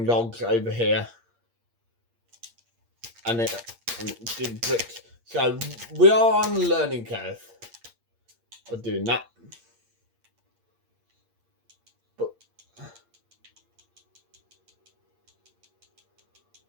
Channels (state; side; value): late; left; 8.6 ms